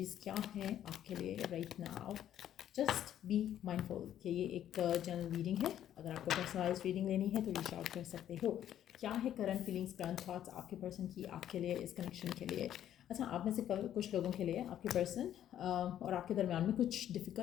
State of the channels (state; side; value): quieter; right; 11.0 dB